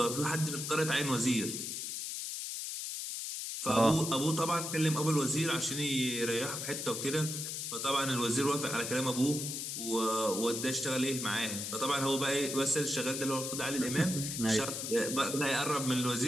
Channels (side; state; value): left; noise; hiss, 4 dB below the sound